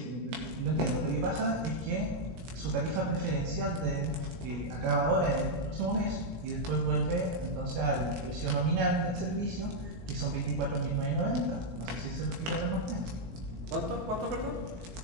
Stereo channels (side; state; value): left; late; 18 ms